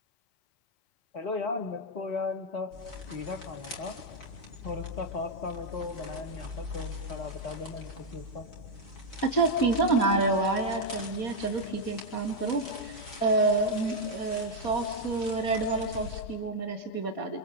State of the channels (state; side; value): late; right; 4.2 ms